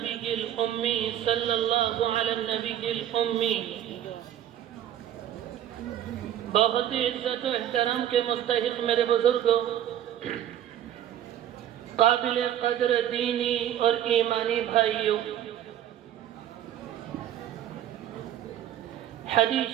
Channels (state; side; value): quieter; left; 11.3 dB